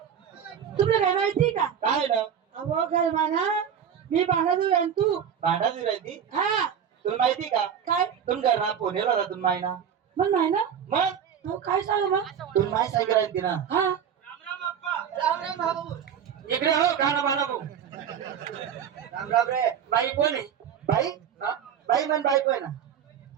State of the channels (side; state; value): left; quieter; 8.3 dB